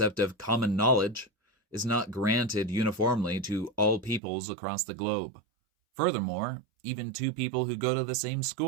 of common knowledge is not granted uniformly to all peoples across the globe. Furthermore, even two people who go to the same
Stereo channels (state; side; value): drops out; left; at 4.2 s